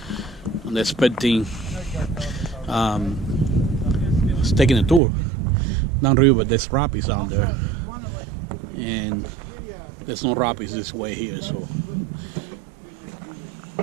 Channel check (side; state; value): left; drops out; at 5.0 s